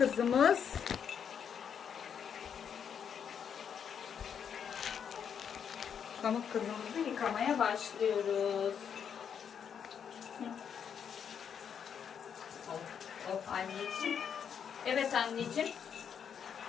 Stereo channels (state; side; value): quieter; right; 7.7 dB